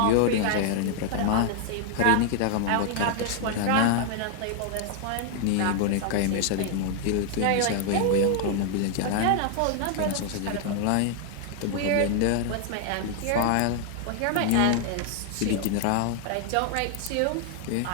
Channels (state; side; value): different; both; correlation 0.00